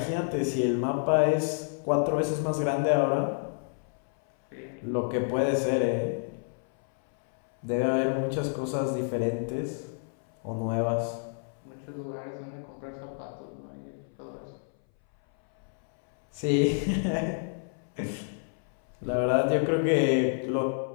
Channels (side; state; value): right; silent; 58 dB below the other